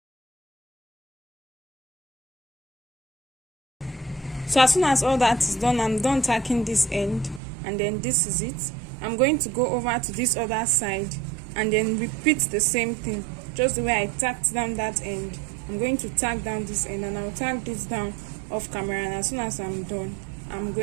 So as soon as all that is done, I'm done tacking this end, and then this is it. I'm going to go over to this other side and then repeat the same thing, just the way I tacked down that end. I'm going to tack down this end, and I'll tack this down off camera, and as soon as I'm done, I'm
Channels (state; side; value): drops out; left; at 7.4 s